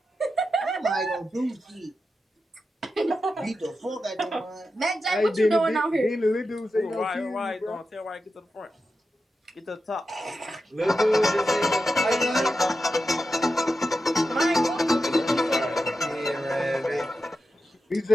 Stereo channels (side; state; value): both; normal; correlation 0.90